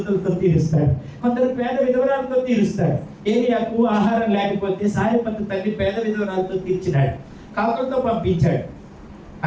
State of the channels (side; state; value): both; identical; correlation 1.00